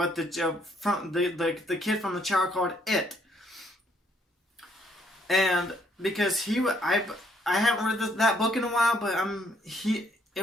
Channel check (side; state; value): both; normal; correlation 0.68